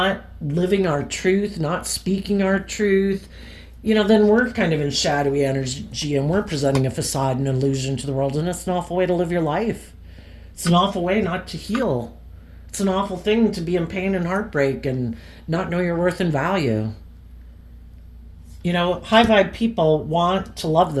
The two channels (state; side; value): identical; both; correlation 1.00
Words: living our truth, not speaking our truth, you know, then we're kind of in shadowy energy and we're presenting a facade and illusion to the world, and it's an awful way to live your life. It's an awful way not to heal. It's an awful thing to be in pain and heartbreak and not know your worth and value. You know, high vibe people want to love